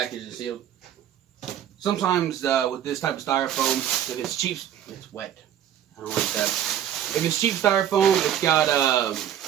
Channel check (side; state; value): left; quieter; 10.4 dB